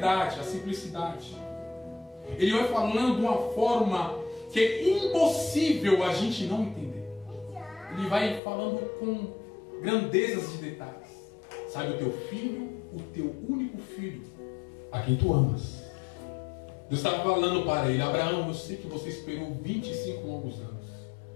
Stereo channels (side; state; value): right; drops out; at 8.4 s